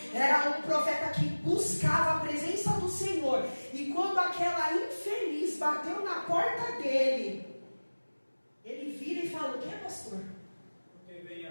Era um profeta que buscava a presença do Senhor. E quando aquela infeliz bateu na porta dele, ele vira e fala: o que, pastor? Porque vem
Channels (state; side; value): inverted; both; correlation -1.00